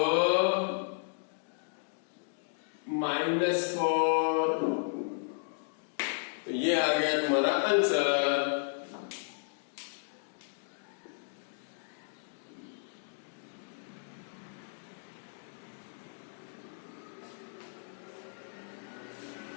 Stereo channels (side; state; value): right; silent; digital silence